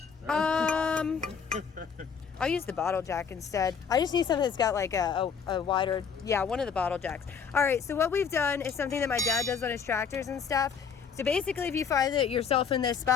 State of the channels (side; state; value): right; quieter; 6.5 dB